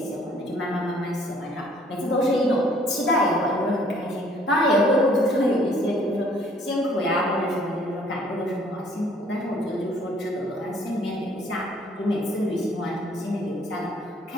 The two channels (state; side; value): normal; both; correlation 0.60